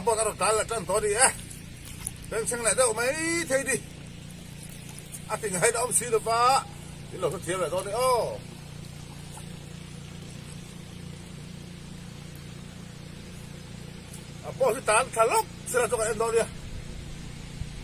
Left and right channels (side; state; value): both; identical; correlation 1.00